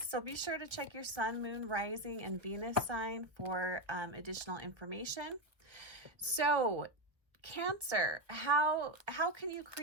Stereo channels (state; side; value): late; left; 1.1 ms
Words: be sure to check your sun, moon, rising, and Venus sign for additional information. So Cancer, how can you